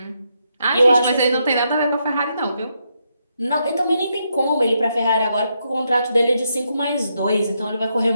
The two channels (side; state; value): both; inverted; correlation -0.80